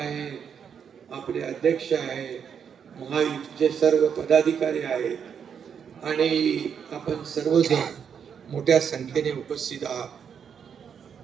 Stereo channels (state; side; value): quieter; left; 7.4 dB